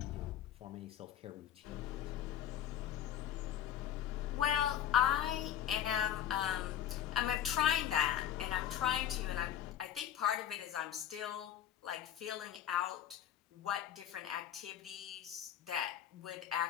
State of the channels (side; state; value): right; quieter; 10.5 dB